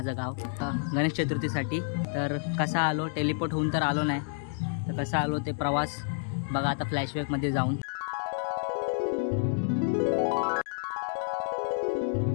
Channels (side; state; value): right; silent; digital silence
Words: गाव। गणेश चतुर्थीसाठी तर कसा आलो, टेलिपोर्ट होऊन तर आलो नाही, तर कसा आलो ते प्रवास बघा आता फ्लॅशबॅकमध्ये जाऊन।